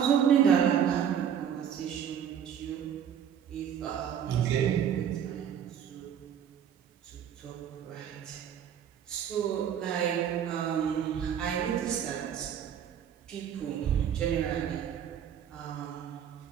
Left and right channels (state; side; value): quieter; left; 8.8 dB